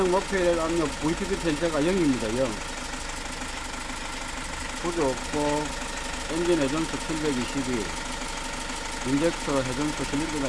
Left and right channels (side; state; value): both; identical; correlation 1.00